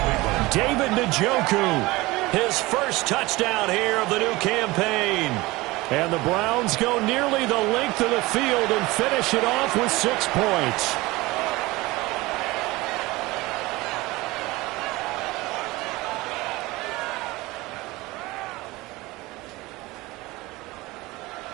David Njoku, his first touchdown here of the new campaign. And the Browns go nearly the length of the field and finish it off with 6 points.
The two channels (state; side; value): quieter; left; 20.9 dB